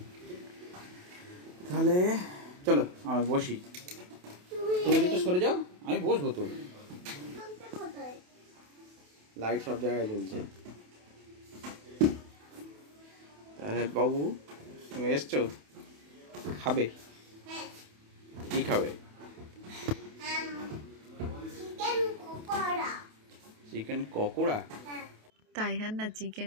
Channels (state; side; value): late; left; 28 ms